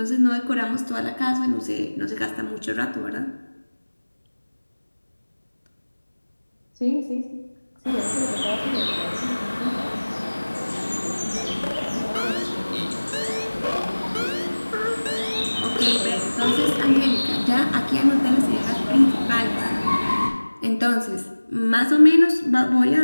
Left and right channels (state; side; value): inverted; both; correlation -1.00